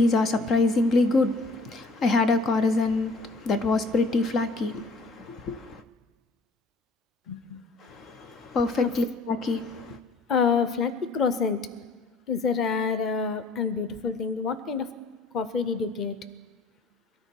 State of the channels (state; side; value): quieter; right; 3.4 dB